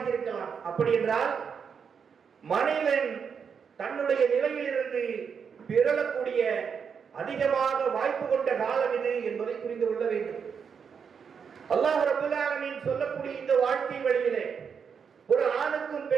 இருக்கலாம். அப்படி என்றால் மனிதன் தன்னுடைய நிலையிலிருந்து பிறழக்கூடிய அதிகமாக வாய்ப்பு கொண்ட காலம் இது என்பதை புரிந்து கொள்ள வேண்டும். அல்லாஹ் ரப்பல் ஆலமீன் சொல்லக்கூடிய இந்த வாழ்க்கை வழியிலே ஒரு ஆணுக்கும்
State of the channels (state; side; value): quieter; left; 6.6 dB